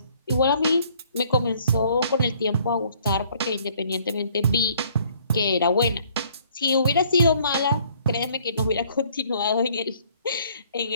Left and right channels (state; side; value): inverted; both; correlation -0.61